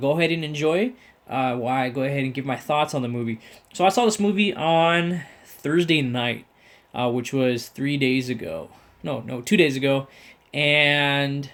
ahead and enjoy. While I go ahead and give my thoughts on the movie. So I saw this movie on Thursday night, which was 3 days ago. No, 2 days ago, and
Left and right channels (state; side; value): identical; both; correlation 1.00